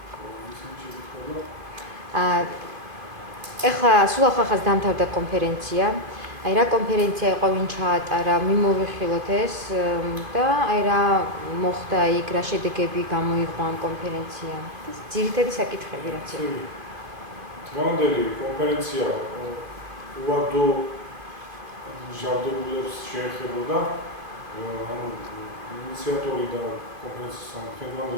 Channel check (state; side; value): late; left; 2.5 ms